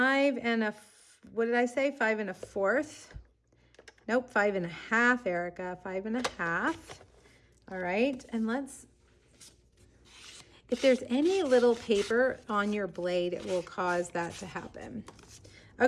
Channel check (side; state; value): both; identical; correlation 1.00